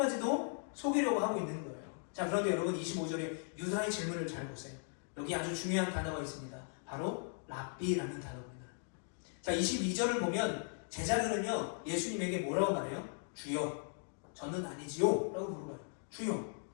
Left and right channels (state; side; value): silent; right; 52 dB below the other